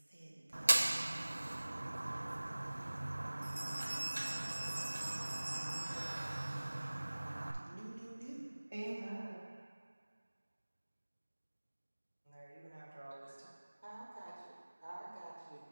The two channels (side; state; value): both; inverted; correlation -1.00